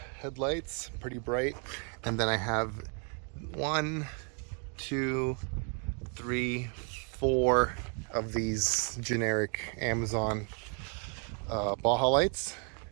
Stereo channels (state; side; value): quieter; left; 39.7 dB